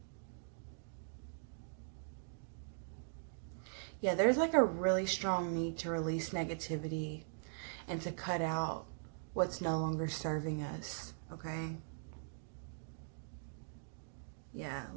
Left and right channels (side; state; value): left; silent; digital silence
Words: Yeah, there's like a really strong need to release negativity and to cut out what's no longer serving us, okay? Yeah,